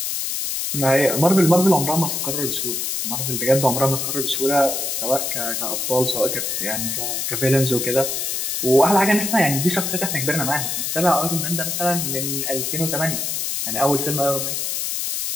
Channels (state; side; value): noise; left; hiss, 1 dB below the sound